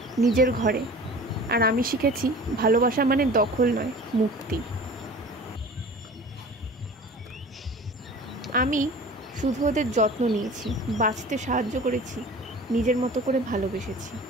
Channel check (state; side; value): normal; both; correlation 0.41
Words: নিজের ঘরে, আর আমি শিখেছি ভালোবাসা মানে দখল নয়, মুক্তি। আমি শুধু ওদের যত্ন নিয়েছি, বাঁচতে সাহায্য করেছি, নিজের মতো করে ভালোবেসেছি।